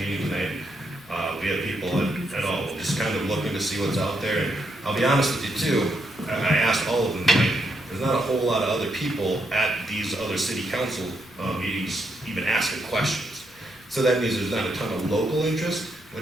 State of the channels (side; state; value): both; normal; correlation 0.79